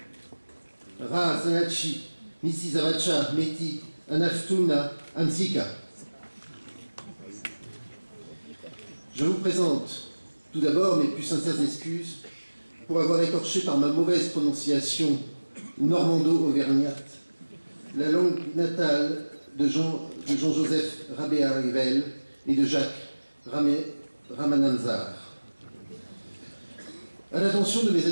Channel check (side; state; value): both; inverted; correlation -1.00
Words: Ra Zanachi, Misi Zavacha Meti, Anaftuna Ansika. Je vous présente tout d'abord mes plus sincères excuses pour avoir écorché par ma mauvaise prononciation normando-auvergnate la langue natale de Jean-Joseph Rabéa-Rivel et de Jacques Ramananzar. À l'attention de mes